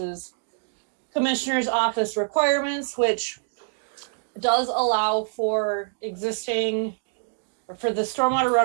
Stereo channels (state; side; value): silent; left; digital silence